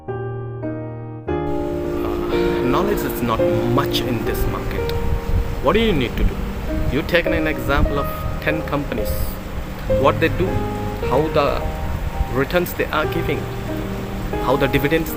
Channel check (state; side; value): identical; both; correlation 1.00